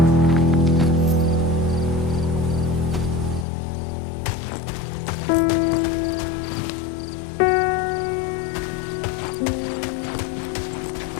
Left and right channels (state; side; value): drops out; right; at 3.5 s